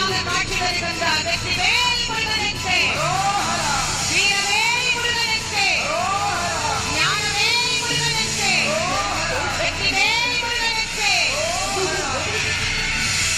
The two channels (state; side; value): identical; both; correlation 1.00